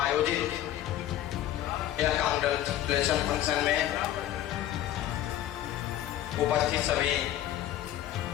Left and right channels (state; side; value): quieter; right; 12.6 dB